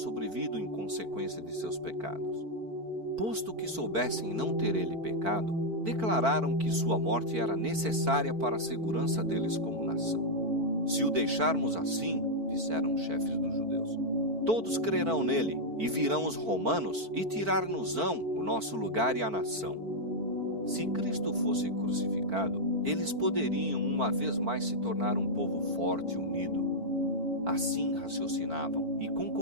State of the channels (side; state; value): left; late; 4.5 ms